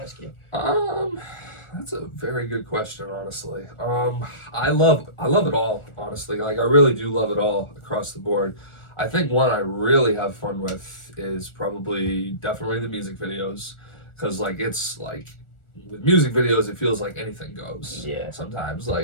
you. That's a very good question, honestly. I love it all, honestly. Like I really do love it all across the board. I think one I really have fun with is definitely the music videos, because like it's like with music videos it feels like anything goes. Yeah. Sometimes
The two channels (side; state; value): right; late; 1.4 ms